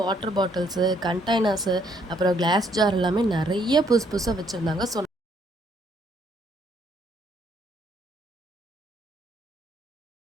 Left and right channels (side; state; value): both; normal; correlation 0.68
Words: வாட்டர் பாட்டில்ஸு, கண்டெய்னர்ஸு, அப்புறம் கிளாஸ் ஜார் எல்லாமே நிறைய புதுசாக வச்சுருந்தாங்க. ஸோ